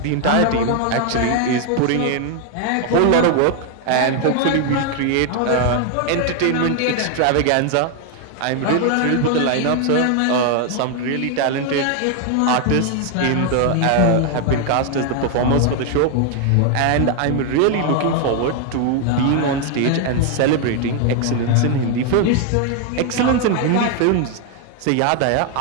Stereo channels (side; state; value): both; different; correlation 0.00